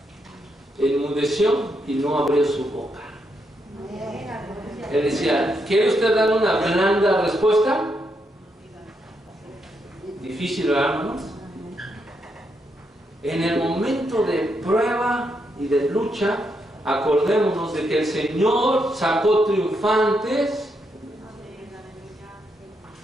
Enmudeció y no abrió su boca. Él decía, ¿quiere usted dar una blanda respuesta? Difícil, ¿verdad, hermanos? En el momento de prueba y de lucha, acordémonos de que el Señor sacó triunfantes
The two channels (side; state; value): both; normal; correlation 0.80